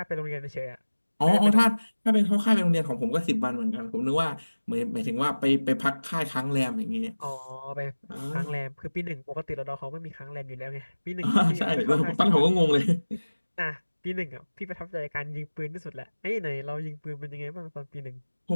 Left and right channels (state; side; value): inverted; both; correlation -1.00